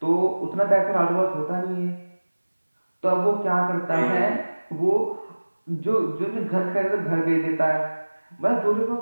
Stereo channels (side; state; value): both; inverted; correlation -1.00